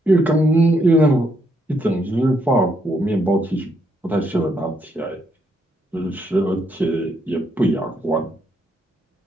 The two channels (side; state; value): both; normal; correlation 0.75